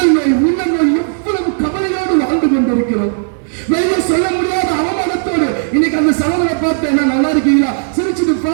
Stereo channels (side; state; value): left; silent; digital silence